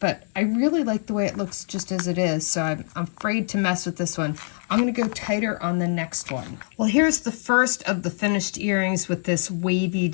but I really like the way it looks just as it is, so I'm afraid to mess with this one. I'm going to go tighter on the next one. Well, here's the first of the finished earrings with this wavy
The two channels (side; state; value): right; silent; 62 dB below the other